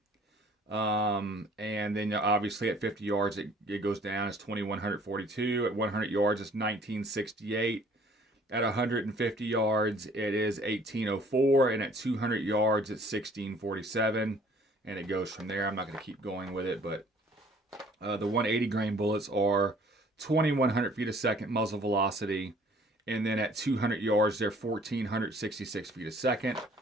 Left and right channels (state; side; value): normal; both; correlation 0.56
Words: And then obviously at 50 yards, it goes down. It's 2,142. At 100 yards, it's 1968. At 150 yards, it is 1804. And at 200 yards, it's 1647. And it goes from there. I'm not going to keep going with it, but the 180 grain bullets are 2,100 feet a second muzzle velocity, and then at 200 yards they're 1,466 feet a second,